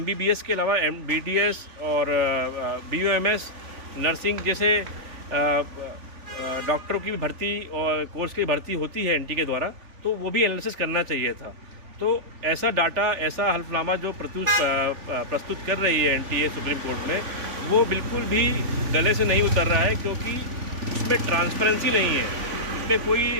के अलावा बीडीएस और बीयूएमएस, नर्सिंग जैसे डॉक्टरों की भी भर्ती और कोर्स की भर्ती होती है एनटीए के द्वारा, तो वो भी एनालिसिस करना चाहिए था। तो ऐसा डाटा, ऐसा हल्फनामा जो प्रस्तुत कर रही है एनटीए सुप्रीम कोर्ट में, वो बिल्कुल भी गले से नहीं उतर रहा है क्योंकि उसमें ट्रांसपेरेंसी नहीं है। उसमें कोई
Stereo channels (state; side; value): late; left; 3.5 ms